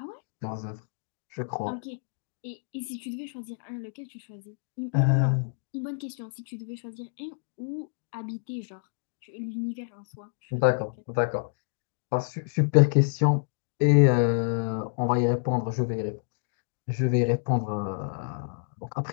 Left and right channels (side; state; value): right; silent; digital silence